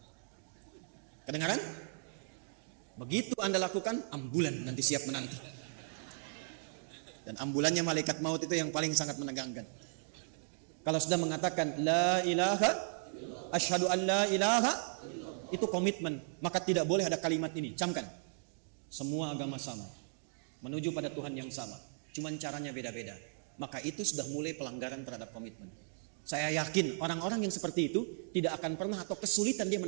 Kedengaran? Begitu Anda lakukan, ambulan nanti siap menanti. Dan ambulannya malaikat maut itu yang paling sangat menegangkan. Kalau sudah mengatakan la ilaha, asyhadu an la ilaha, itu komitmen. Maka tidak boleh ada kalimat ini. Camkan. Semua agama sama, menuju pada Tuhan yang sama. Cuman caranya beda-beda. Maka itu sudah mulai pelanggaran terhadap komitmen. Saya yakin orang-orang yang seperti itu tidak akan pernah atau kesulitan dia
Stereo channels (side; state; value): left; silent; digital silence